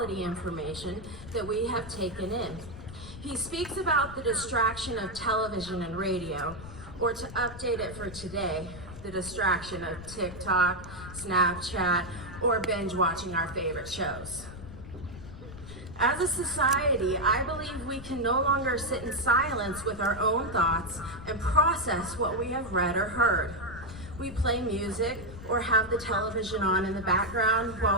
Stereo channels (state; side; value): noise; left; rumble, 13 dB below the sound